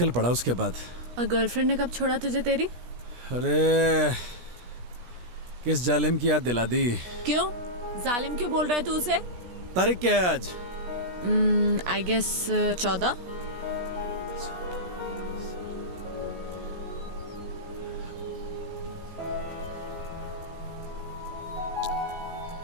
पड़ा उसके बाद। और गर्लफ्रेंड ने कब छोड़ा तुझे तेरी? अरे किस जालिम की याद दिला दी। क्यों जालिम क्यों बोल रहा है तू उसे? तारीख क्या है आज? I guess 14।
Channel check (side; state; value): left; late; 17 ms